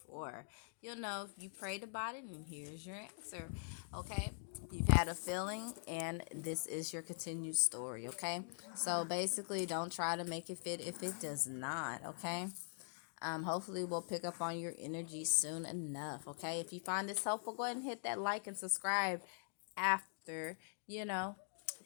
for. You'll know if you prayed about it, and here's your answer. Okay, you've had a feeling, and this is your continued story. Okay, so basically, don't try to make it fit if it does not. Okay. Hopefully we'll pick up on your energy soon enough. Okay. If you find this helpful, go ahead and hit that like and subscribe after, you know,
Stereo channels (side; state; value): right; silent; digital silence